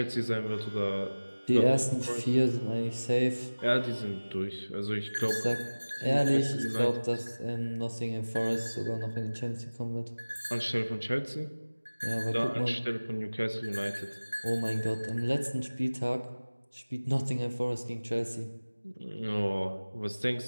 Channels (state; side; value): inverted; both; correlation -1.00